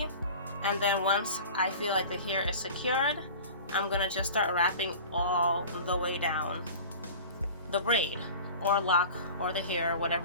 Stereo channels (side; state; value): both; inverted; correlation -0.38